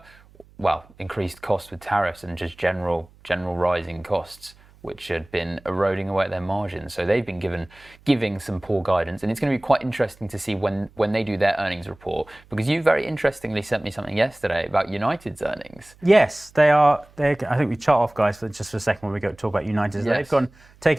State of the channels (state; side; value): noise; right; hum, 27 dB below the sound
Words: increased costs with tariffs and just general rising costs, which had been eroding away at their margins. So they've been giving some poor guidance, and it's going to be quite interesting to see when they do their earnings report, because you very interestingly sent me something yesterday about United's earnings. Yes, they are. I think we chart off, guys, for just for a second when we go to talk about United. Yes. They've